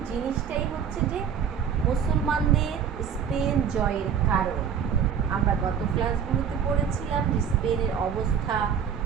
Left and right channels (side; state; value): left; quieter; 7.7 dB